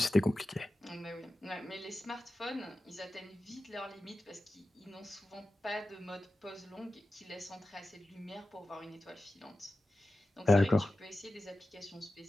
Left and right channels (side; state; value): both; normal; correlation 0.94